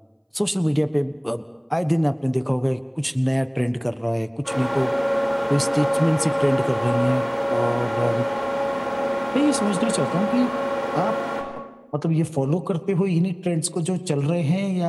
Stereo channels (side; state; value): both; identical; correlation 1.00